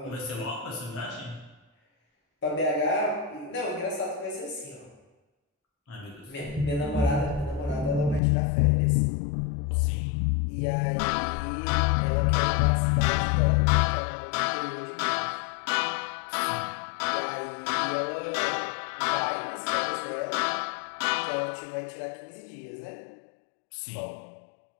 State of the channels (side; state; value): right; drops out; at 8.2 s